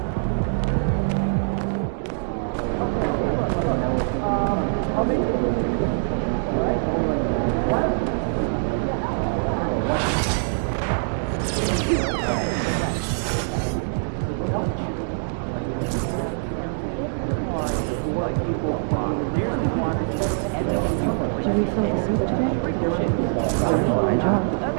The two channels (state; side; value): silent; left; 61 dB below the other